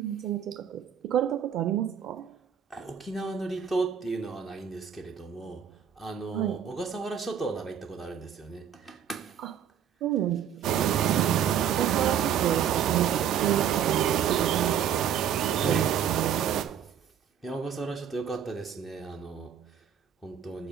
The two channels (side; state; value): left; quieter; 8.8 dB